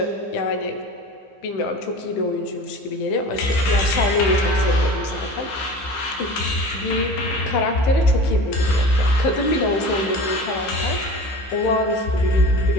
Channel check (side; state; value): right; late; 15 ms